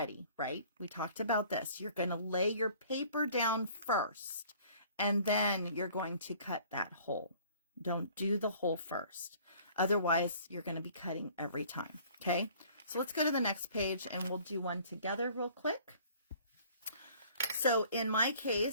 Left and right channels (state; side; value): inverted; both; correlation -0.53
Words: right? We talked about this. You're going to lay your paper down first, and then you're going to cut that hole. Don't do the hole first. Otherwise, you're going to be cutting every time. Okay, so let's go to the next page and we'll do one together real quick. So in my